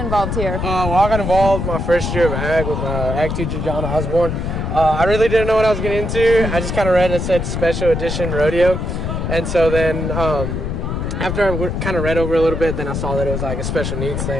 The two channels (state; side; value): noise; left; rumble, 3 dB below the sound